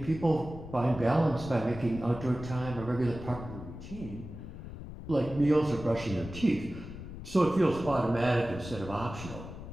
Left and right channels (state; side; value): noise; left; rumble, 11 dB below the sound